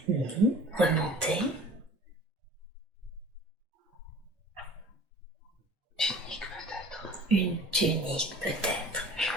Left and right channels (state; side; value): normal; both; correlation 0.45